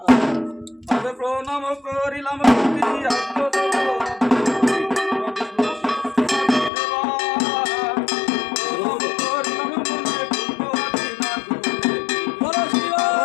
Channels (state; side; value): drops out; right; at 6.7 s